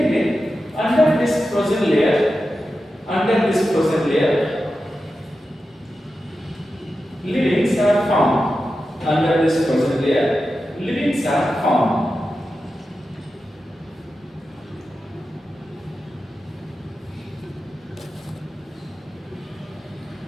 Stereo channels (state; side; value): normal; both; correlation 0.91